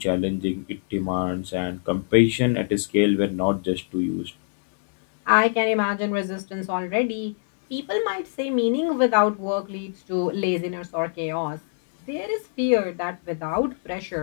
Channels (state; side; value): silent; right; digital silence